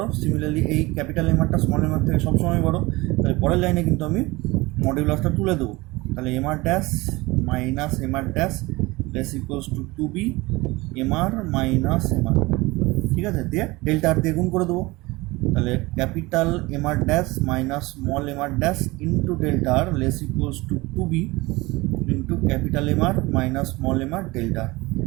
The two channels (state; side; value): quieter; left; 22.0 dB